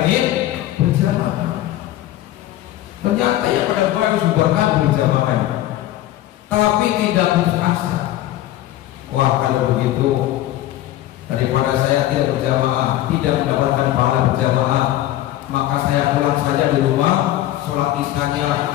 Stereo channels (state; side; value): quieter; right; 14.1 dB